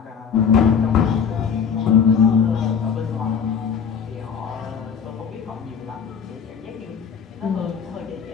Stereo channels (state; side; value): quieter; right; 6.9 dB